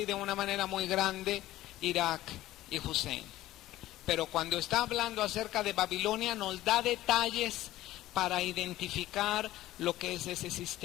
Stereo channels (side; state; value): right; quieter; 15.4 dB